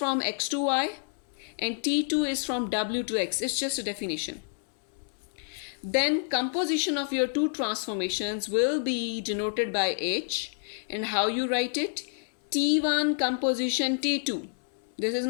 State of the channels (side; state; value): right; silent; 59 dB below the other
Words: x to y and T2 is from w to x. It's just a definition. Then composition of your two transformations will be denoted by H. And how you write it? T1 composition T2. This is